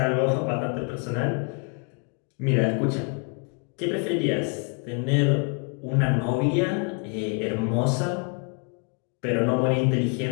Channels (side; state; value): right; quieter; 38.0 dB